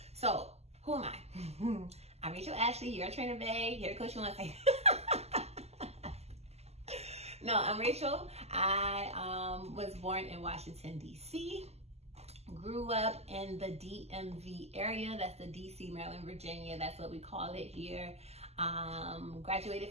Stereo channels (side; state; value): left; late; 0.30 ms